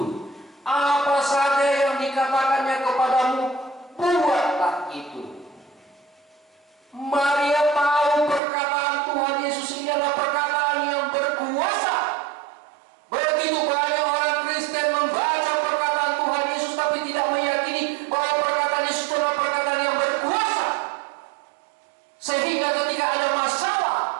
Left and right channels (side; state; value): left; drops out; at 8.4 s